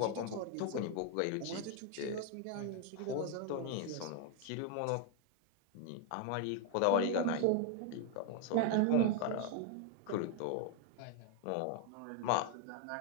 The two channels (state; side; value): different; both; correlation 0.00